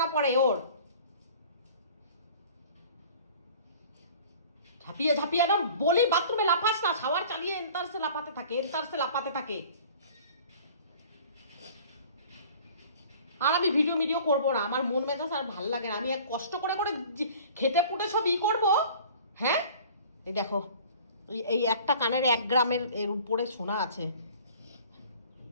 পড়ে ওর, ঝাঁপিয়ে না বলি বাথরুমে লাফাস না, শাওয়ার চালিয়ে এন্তারসে লাফাতে থাকে। আর আমি ভিডিও করবো না, আমার মন মেজাজ আর ভাল লাগে না। আমি এক কষ্ট করে খেটে পুটে সব করবো। হ্যাঁ, এই দেখো, এই একটা কানের 1 গ্রামের এর উপরে সোনা আছে।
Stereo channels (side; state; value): both; inverted; correlation -0.47